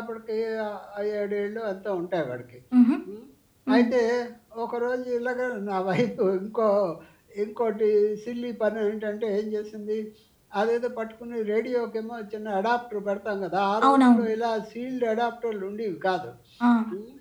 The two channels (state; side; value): identical; both; correlation 1.00